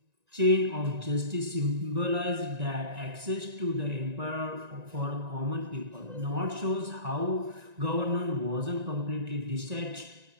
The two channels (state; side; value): late; left; 1.9 ms